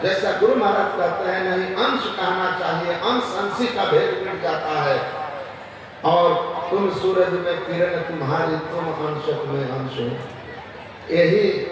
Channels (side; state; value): both; identical; correlation 1.00